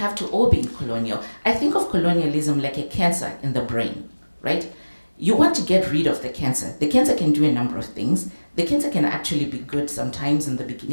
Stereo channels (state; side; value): inverted; both; correlation -1.00